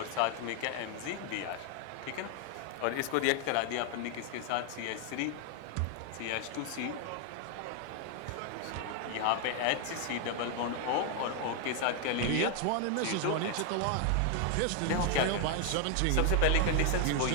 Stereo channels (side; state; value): both; different; correlation 0.00